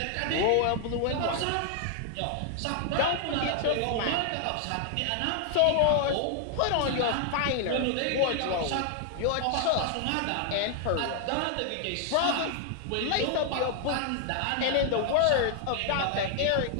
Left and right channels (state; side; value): different; both; correlation 0.00